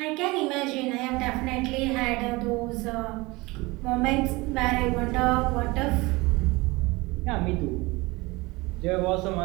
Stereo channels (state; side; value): quieter; left; 23.1 dB